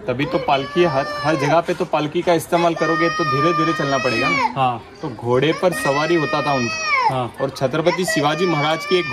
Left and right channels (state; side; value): identical; both; correlation 1.00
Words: तभी तो पालकी हर जगह पे तो पालकी का इस्तेमाल करोगे तो धीरे धीरे चलना पड़ेगा ना। हाँ, तो घोड़े पर सवारी होता था उनका। हाँ, और छत्रपति शिवाजी महाराज की